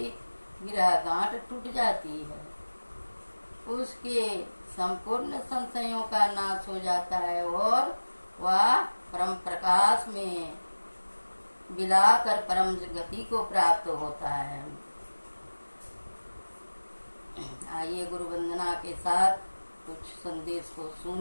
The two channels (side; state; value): both; inverted; correlation -1.00